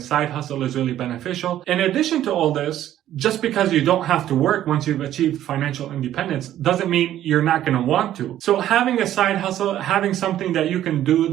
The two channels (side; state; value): left; quieter; 12.3 dB